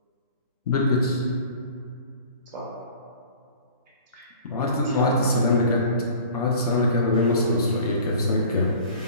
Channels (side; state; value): both; inverted; correlation -0.45